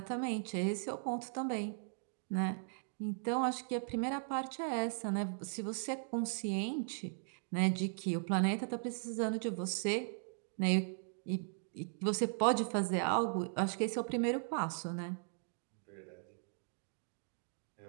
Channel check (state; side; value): silent; left; digital silence